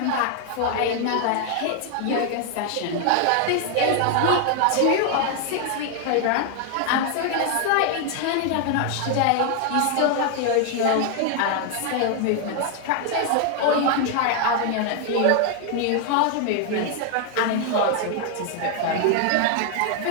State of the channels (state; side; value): different; both; correlation 0.00